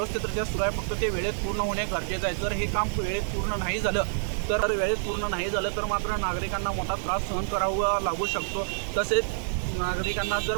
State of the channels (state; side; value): silent; left; digital silence